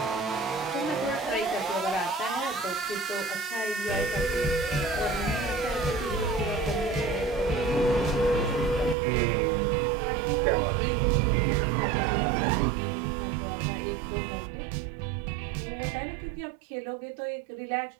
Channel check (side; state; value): left; drops out; at 9.0 s